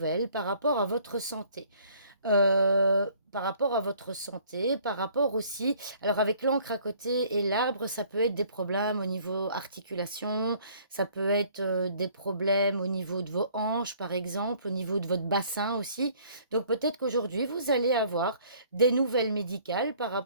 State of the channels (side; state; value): both; inverted; correlation -0.57